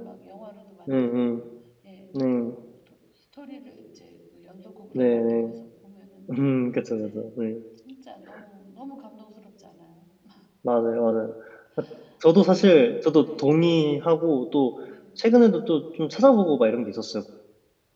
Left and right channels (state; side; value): identical; both; correlation 1.00